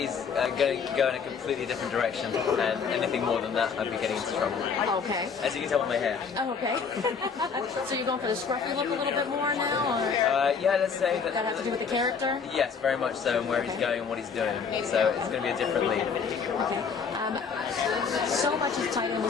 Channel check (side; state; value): right; quieter; 5.9 dB